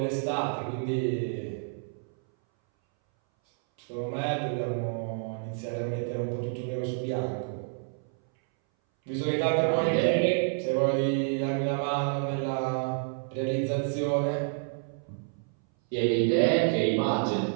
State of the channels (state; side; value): silent; left; 59 dB below the other